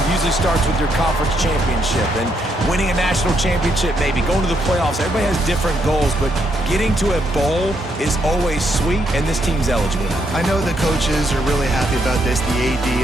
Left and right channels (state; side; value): normal; both; correlation 0.76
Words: usually starts with your conference championship and winning a national championship, maybe going to the playoffs. Everybody has different goals, but getting to a bowl is always sweet, and this team's eligible. I know the coaches are really happy about this, the